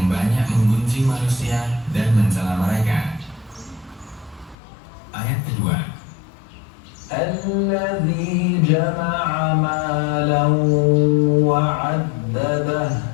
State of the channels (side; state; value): right; drops out; at 4.5 s